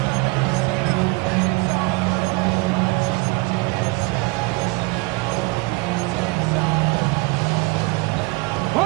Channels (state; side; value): quieter; left; 26.0 dB